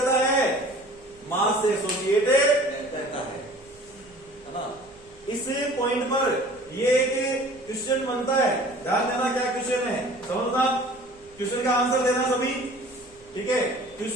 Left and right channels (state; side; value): noise; right; rumble, 28 dB below the sound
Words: है? मास से एसोसिएटेड रहता है ना। इस पॉइंट पर ये एक क्वेश्चन बनता है, ध्यान देना क्या क्वेश्चन है, समझना। क्वेश्चन का आंसर देना सभी, ठीक है।